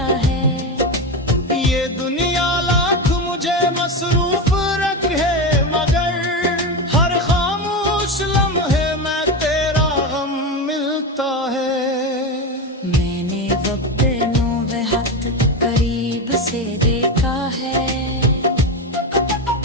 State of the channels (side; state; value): both; normal; correlation 0.17